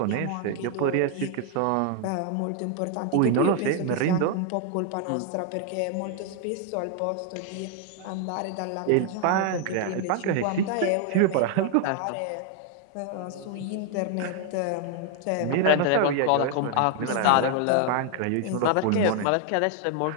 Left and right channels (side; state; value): both; different; correlation 0.00